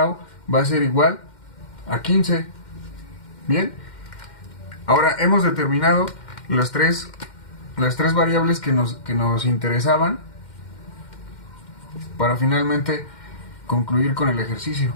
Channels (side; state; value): right; late; 2.1 ms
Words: va a ser igual a 15. Bien, ahora hemos determinado las tres variables que nos interesaban para finalmente concluir con el ejercicio.